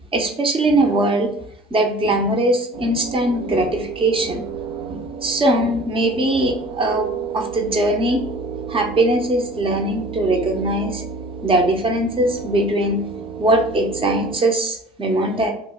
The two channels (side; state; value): both; normal; correlation 0.46